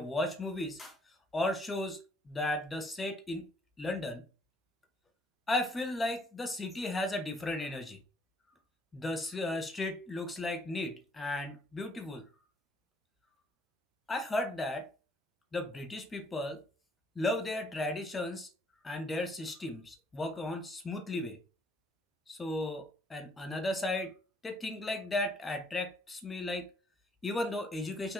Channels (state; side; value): normal; both; correlation 0.66